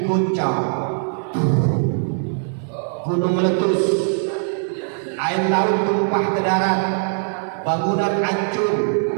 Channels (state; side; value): silent; left; digital silence